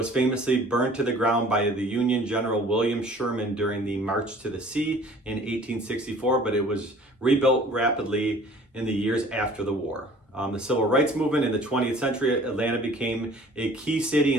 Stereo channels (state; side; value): normal; both; correlation 0.50